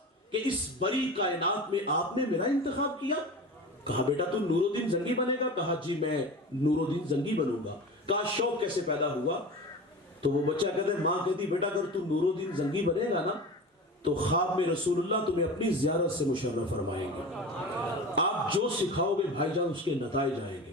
کہ اس بڑی کائنات میں آپ نے میرا انتخاب کیا. کہا بیٹا تو نور الدین زنگی بنے گا؟ کہا جی میں نور الدین زنگی بنوں گا. کہا شوق کیسے پیدا ہوا؟ تو وہ بچہ کہتا ہے, ماں کہتی بیٹا اگر تو نور الدین زنگی بنے گا نا تو خواب میں رسول اللہ تمہیں اپنی زیارت سے مشرف فرمائیں گے. آپ جو سکھاؤ گے بھائی جان اس کے نتائج آئیں گے.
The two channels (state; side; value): normal; both; correlation 0.32